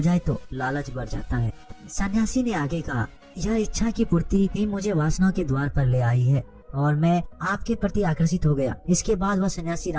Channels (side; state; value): both; identical; correlation 1.00